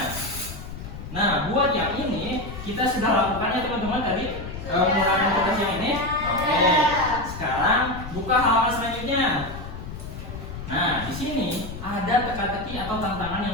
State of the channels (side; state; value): left; noise; rumble, 10 dB below the sound